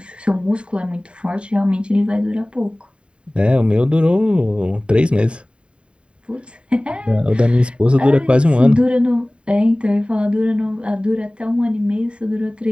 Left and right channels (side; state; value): left; late; 0.055 ms